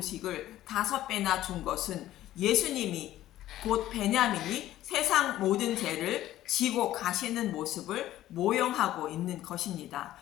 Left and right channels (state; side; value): quieter; right; 13.9 dB